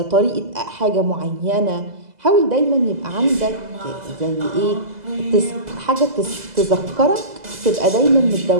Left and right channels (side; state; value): left; late; 2.0 ms